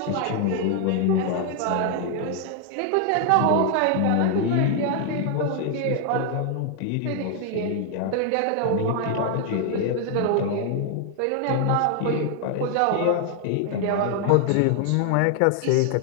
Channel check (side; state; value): both; different; correlation 0.00